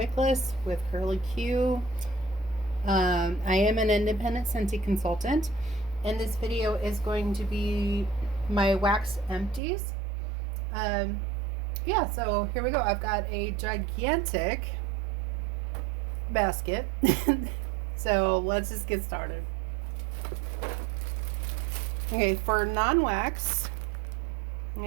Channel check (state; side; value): drops out; left; at 9.6 s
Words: with Curly Q. I am an independent Scentsy consultant, and this video is going to be my wax empties. Um, yeah, so here we go. I've got a gigantic basket. So let's just get started. Okay, for non-wax,